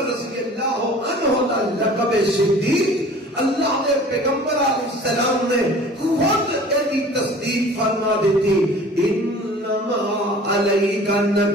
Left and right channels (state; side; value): normal; both; correlation 0.46